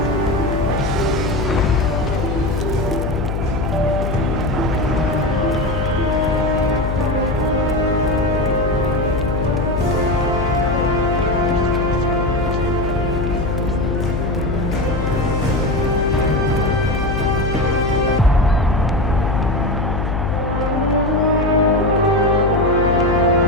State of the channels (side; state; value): left; noise; hum, 2 dB below the sound